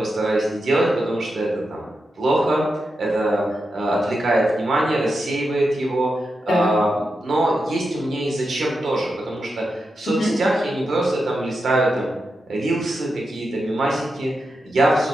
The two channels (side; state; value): both; normal; correlation 0.88